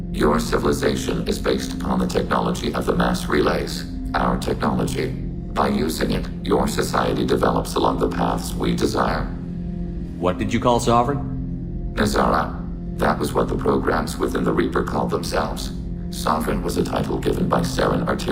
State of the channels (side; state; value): both; identical; correlation 1.00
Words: Your civilization is based upon the technology of the mass relays, our technology. By using it, your society develops along the paths we desire. What did you call Sovereign? Nazara. That was what the programs within the Reaper called themselves. Sovereign was a title given by Saren